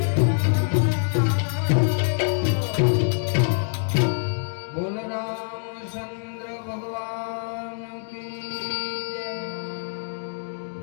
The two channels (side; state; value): right; silent; digital silence